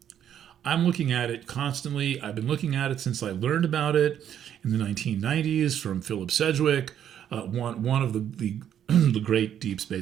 I'm looking at it constantly. I've been looking at it since I learned about it in the 1990s from Philip Sedgwick, one of the the great deep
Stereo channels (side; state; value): left; quieter; 9.8 dB